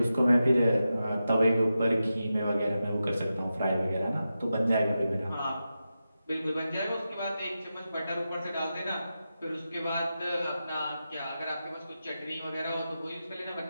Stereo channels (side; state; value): both; inverted; correlation -0.90